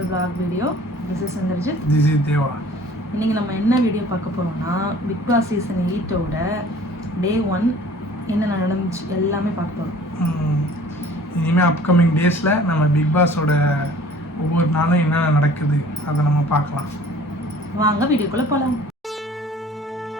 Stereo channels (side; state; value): both; normal; correlation 0.49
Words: Vlog video. This is Sandarjit. This is Deva. இன்னைக்கு நம்ம என்ன video பார்க்க போறோம்னா பிக் பாஸ் சீசன் 8 ஓட டே 1 என்ன நடந்துச்சு எல்லாமே பார்க்க போறோம். இனிமே அப்கமிங் டேஸ்ல நம்ம பிக் பாஸோட ஒவ்வொரு நாளும் என்ன நடக்குது அதை நம்ம பார்க்கலாம். வாங்க வீடியோக்குள்ள போலாம்.